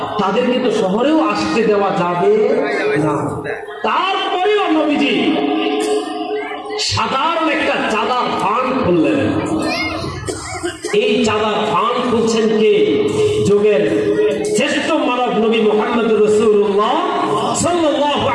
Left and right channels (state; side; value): identical; both; correlation 1.00